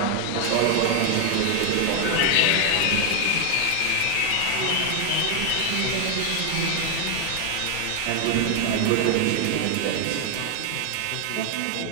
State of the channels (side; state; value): both; different; correlation 0.00